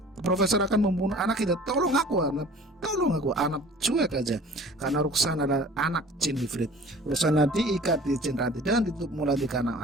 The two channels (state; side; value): normal; both; correlation 0.46